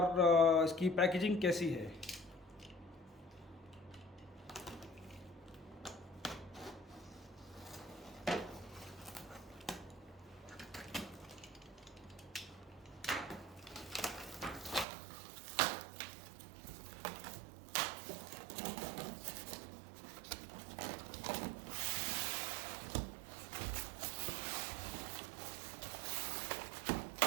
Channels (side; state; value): left; drops out; at 14.9 s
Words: इसकी पैकेजिंग कैसी है।